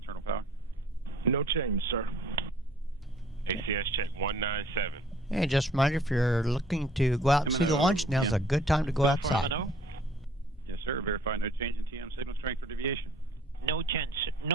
power. No change, sir. ACS check 197. And just a reminder, if you're looking to go out and see the launch, now's a good time to go outside. Yes, sir. Verify no change in TM signal strength or deviation. No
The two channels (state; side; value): normal; both; correlation 0.56